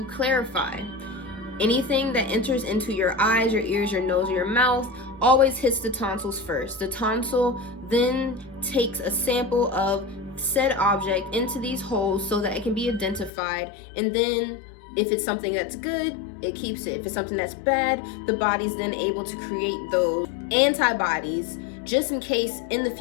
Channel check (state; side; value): drops out; right; at 13.3 s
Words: clarify, anything that enters into your eyes, your ears, your nose, or your mouth always hits the tonsils first. The tonsil then takes a sample of said object into these holes so that it can be identified, and then if it's something that's good, it keeps it. If it's something that's bad, the body's then able to create those antibodies just in case in the